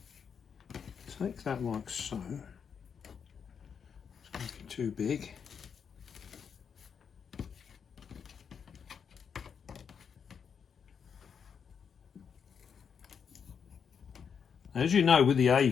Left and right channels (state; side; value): quieter; right; 6.9 dB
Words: take that like so. It's going to be too big. As you know, with the